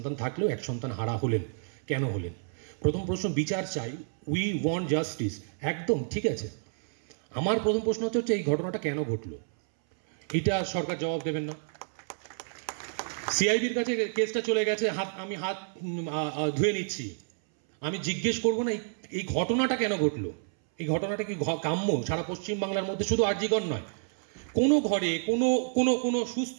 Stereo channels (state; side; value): silent; left; 58 dB below the other